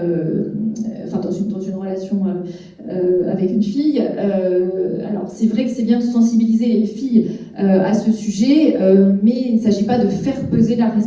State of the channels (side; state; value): both; identical; correlation 1.00